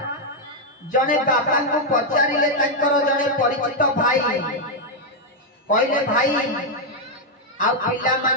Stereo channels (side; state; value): both; normal; correlation 0.00